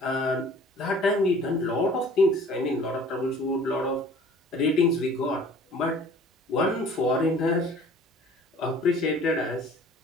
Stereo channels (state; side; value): normal; both; correlation 0.49